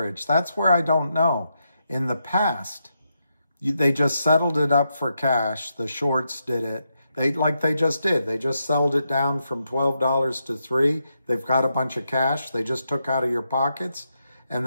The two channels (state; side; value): inverted; both; correlation -0.83